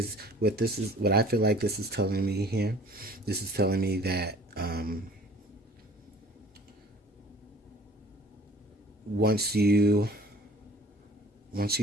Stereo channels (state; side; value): normal; both; correlation 0.49